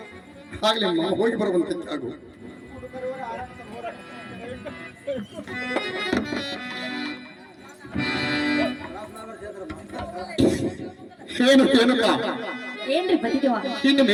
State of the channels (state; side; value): identical; both; correlation 1.00